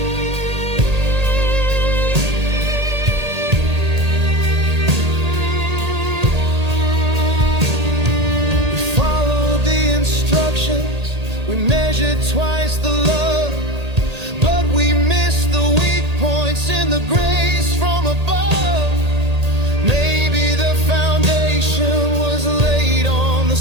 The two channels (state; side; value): late; left; 1.8 ms